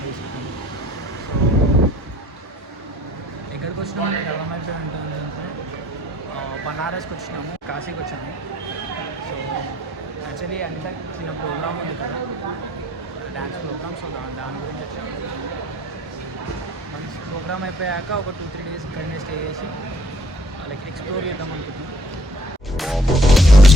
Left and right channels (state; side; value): normal; both; correlation 0.58